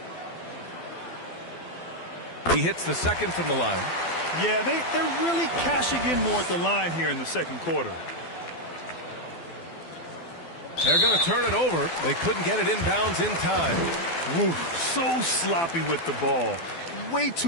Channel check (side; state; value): right; late; 12 ms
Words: He hits the second from the line. Yeah, they're really cashing in more at the line here in the second quarter. They're going to turn it over. They couldn't get it inbounds in time. Ooh, so sloppy with the ball. Way